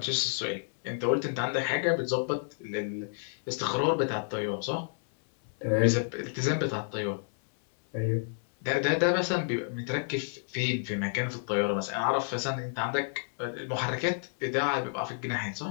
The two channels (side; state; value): right; silent; 58 dB below the other